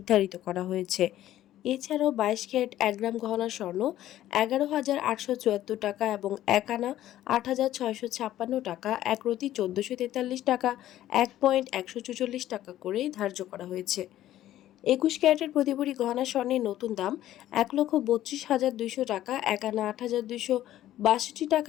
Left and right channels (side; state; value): right; quieter; 13.3 dB